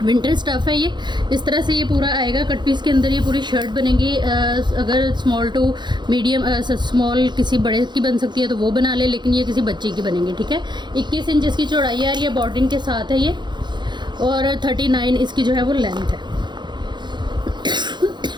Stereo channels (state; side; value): late; left; 0.22 ms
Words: स्टफ़ है ये। इस तरह से ये पूरा आएगा कट पीस के अंदर। ये पूरी शर्ट बनेगी। अगर स्मॉल टू मीडियम स्मॉल किसी बड़े की बन सकती है तो वो बना ले, लेकिन ये किसी बच्चे की बनेगी, ठीक है। 21 इंच इसकी चौड़ाई आ रही है, बॉर्डरिंग के साथ है ये, और 39 इसकी जो है वो लेंथ है।